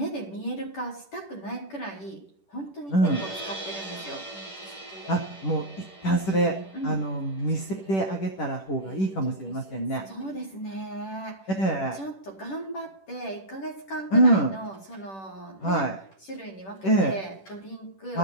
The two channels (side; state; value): right; late; 10 ms